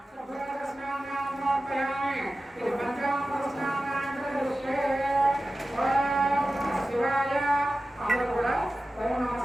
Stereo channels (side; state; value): both; normal; correlation 0.95